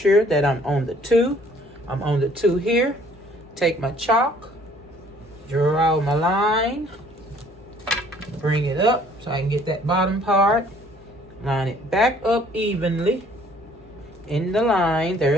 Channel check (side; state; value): both; normal; correlation 0.58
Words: that I'm on the 2. I'm on the 2 here. Take my chalk, draw my line, bring it up so I can get that bottom part. Line it back up evenly in the line.